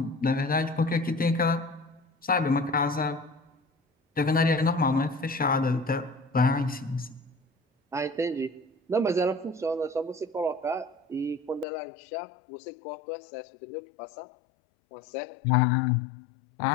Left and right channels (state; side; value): drops out; right; at 11.7 s